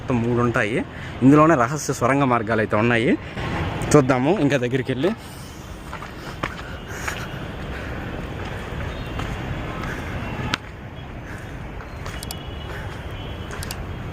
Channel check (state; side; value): identical; both; correlation 1.00